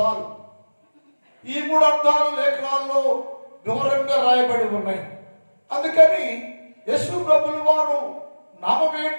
ఈ మూడు అర్థాలు లేఖనాల్లో వివరంగా రాయబడి ఉన్నాయి. అందుకని యేసు ప్రభుల వారు నామం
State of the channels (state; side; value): inverted; both; correlation -1.00